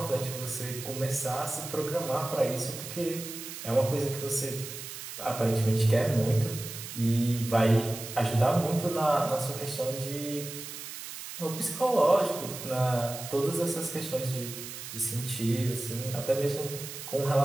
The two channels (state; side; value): noise; right; hiss, 10 dB below the sound